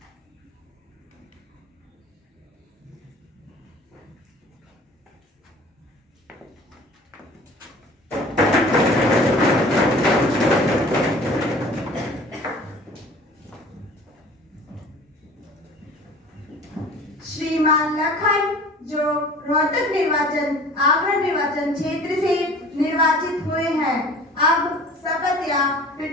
श्रीमान लखन जो रोहतक निर्वाचन आगरा निर्वाचन क्षेत्र से निर्वाचित हुए हैं, अब शपथ या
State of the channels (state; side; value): normal; both; correlation 0.46